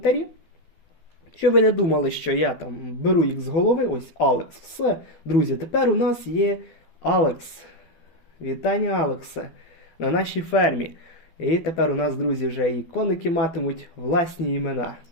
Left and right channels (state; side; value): late; right; 12 ms